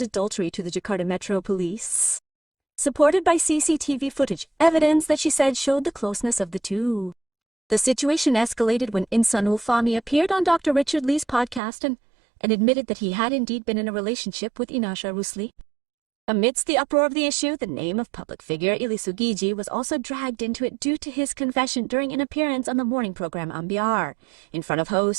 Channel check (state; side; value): drops out; left; at 11.6 s